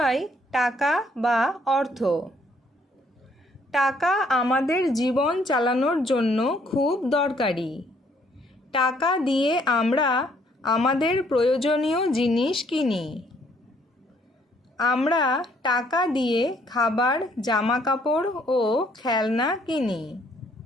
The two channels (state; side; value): normal; both; correlation 0.66